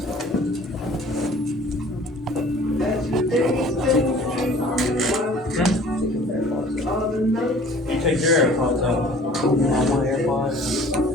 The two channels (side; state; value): both; normal; correlation 0.50